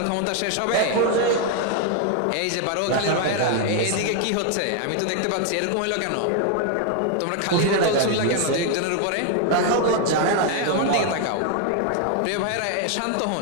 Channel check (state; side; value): different; both; correlation 0.01